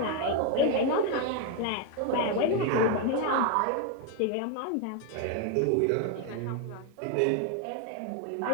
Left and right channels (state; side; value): different; both; correlation 0.01